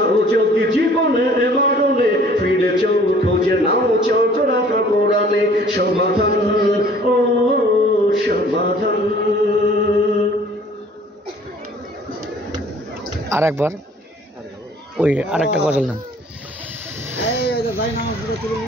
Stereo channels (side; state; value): both; normal; correlation 0.54